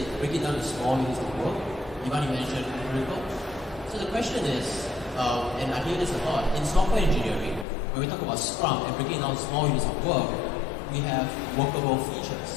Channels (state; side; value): drops out; right; at 7.7 s